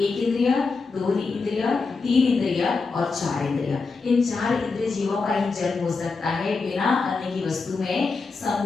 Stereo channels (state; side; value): quieter; right; 4.3 dB